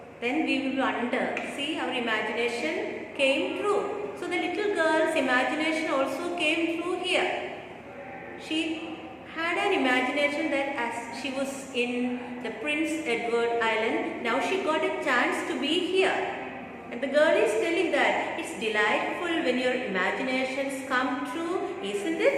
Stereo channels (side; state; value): both; identical; correlation 1.00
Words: Then we will wonder, see, our imagination came true. So the little girl's imagination also came true here. She had an imagination that as she was in the Prince Edward Island, now she got a chance to be here. And the girl is telling that it's delightful when your imaginations come true, isn't